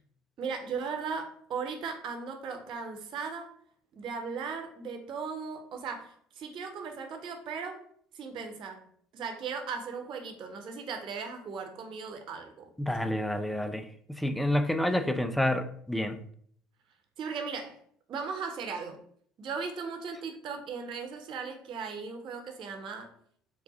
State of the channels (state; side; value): normal; both; correlation 0.72